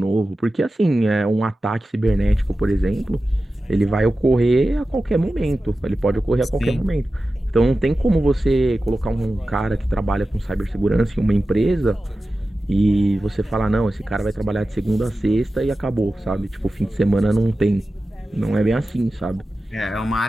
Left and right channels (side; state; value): both; normal; correlation 0.94